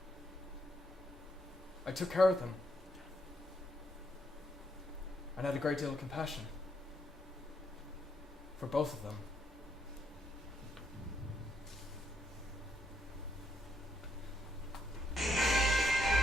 I took care of them. And had a great deal of compassion for both of them.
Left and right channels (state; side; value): normal; both; correlation 0.76